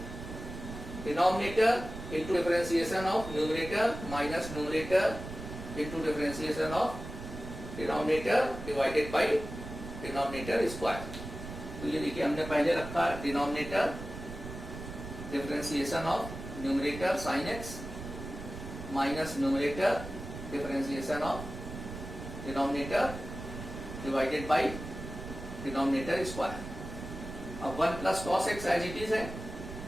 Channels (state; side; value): noise; right; rumble, 10 dB below the sound